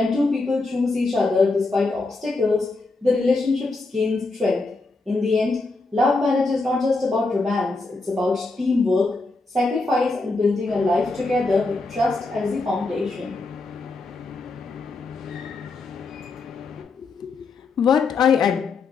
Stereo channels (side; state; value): right; quieter; 3.6 dB